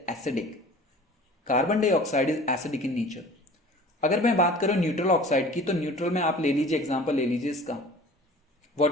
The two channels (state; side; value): normal; both; correlation 0.44